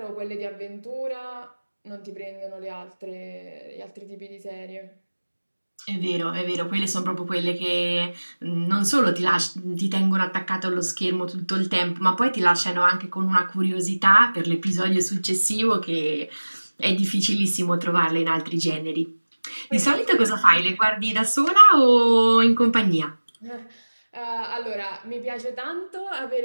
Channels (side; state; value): both; inverted; correlation -1.00